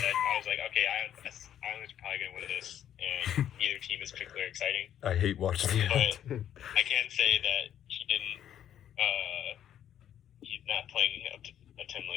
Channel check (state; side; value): quieter; right; 10.4 dB